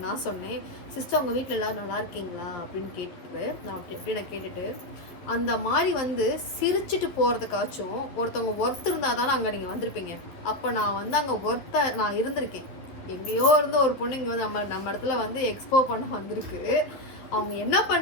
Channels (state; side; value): late; right; 11 ms